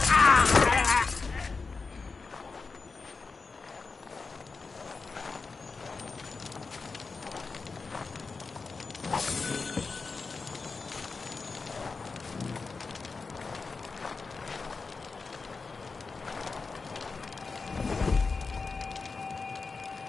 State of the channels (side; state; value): right; quieter; 4.4 dB